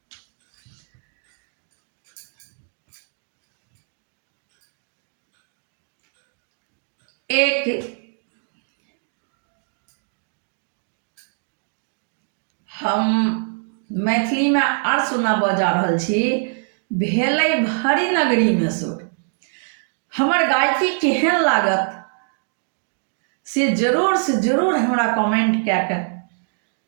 एक हम मैथिली में आर सुनाबऽ जा रहल छी, भेलै भरी नगरी में सुर। हमर गायकी केहन लागत से जरूर हमरा कमेंट कए के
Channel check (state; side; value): silent; left; digital silence